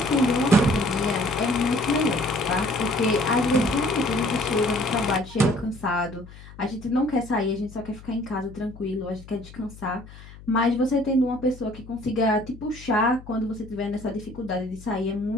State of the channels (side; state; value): left; noise; hum, 18 dB below the sound